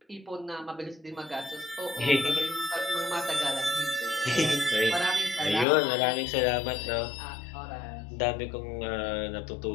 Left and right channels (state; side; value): drops out; right; at 5.7 s